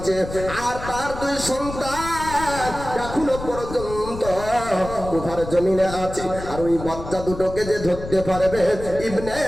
আর তার দুই সন্তান এখনো পর্যন্ত কুফার জমিনে আছে। আর ওই বাচ্চা দুটোকে যে ধরতে পারবে, ইবনে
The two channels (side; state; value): left; noise; rumble, 10 dB below the sound